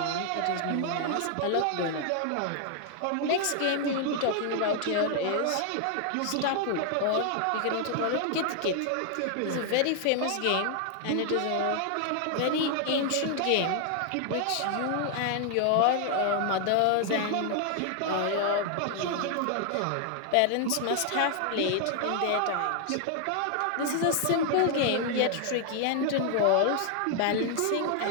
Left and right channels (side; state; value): both; different; correlation 0.00